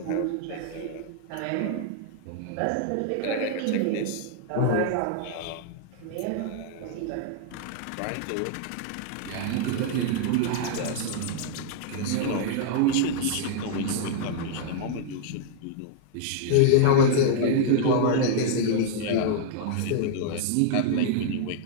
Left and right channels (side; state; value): both; different; correlation -0.01